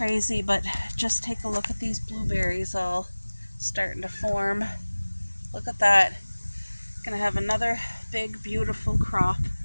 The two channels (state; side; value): inverted; both; correlation -1.00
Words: but just take a look at these blueberries all starting to form. Look at that. Gonna have another big beautiful crop.